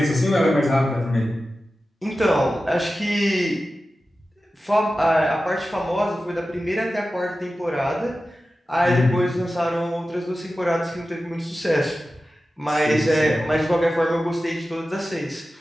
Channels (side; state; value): both; normal; correlation 0.94